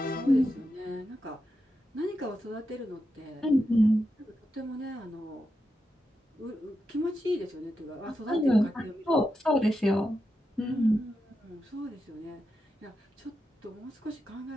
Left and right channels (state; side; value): normal; both; correlation 0.88